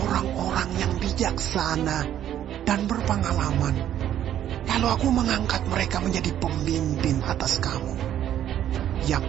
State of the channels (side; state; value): left; quieter; 11.0 dB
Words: yang bijaksana dan berpengalaman. Lalu aku mengangkat mereka menjadi pemimpin atas kamu,